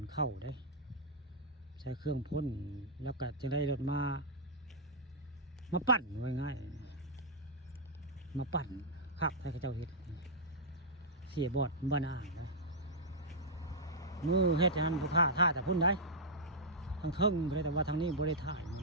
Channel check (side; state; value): both; normal; correlation -0.09